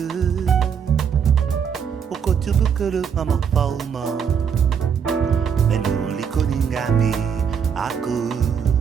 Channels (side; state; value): left; quieter; 7.2 dB